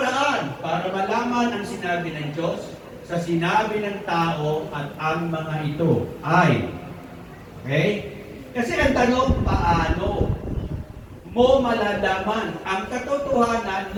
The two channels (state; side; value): identical; both; correlation 1.00